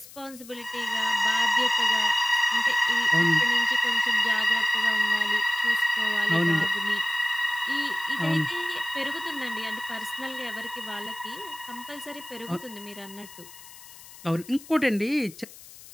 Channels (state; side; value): noise; left; hiss, 19 dB below the sound